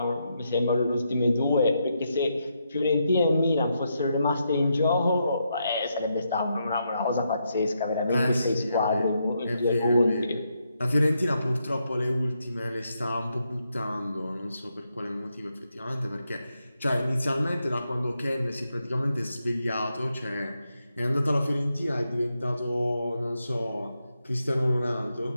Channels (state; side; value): inverted; both; correlation -0.82